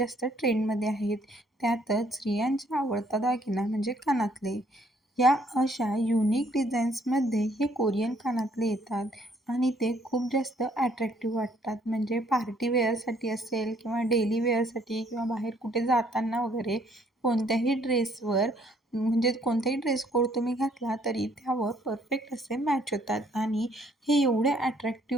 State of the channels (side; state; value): both; normal; correlation 0.65